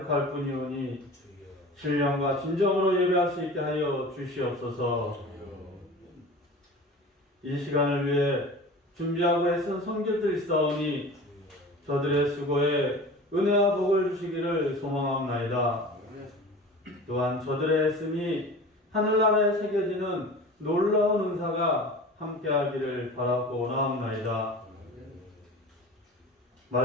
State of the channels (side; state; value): both; normal; correlation 0.37